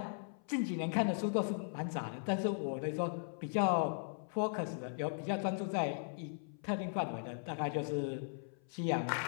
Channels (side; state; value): right; silent; 52 dB below the other